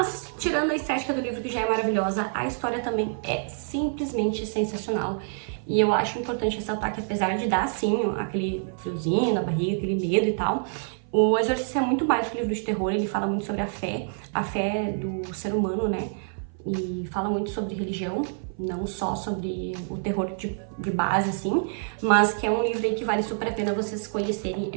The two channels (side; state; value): left; silent; 57 dB below the other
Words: tirando a estética do livro, que já é maravilhosa, a história também é simplesmente sensacional. E eu acho importante ressaltar que, apesar de dar, sim, aquele friozinho na barriga, aquele medo e tal, o Exorcista é muito mais que um livro de terror. Ele fala muito sobre a fé do ser humano, né? E fala muito sobre religião, não só sobre o terror de base, assim, mas que é um livro aí que vale super a pena vocês conhecerem.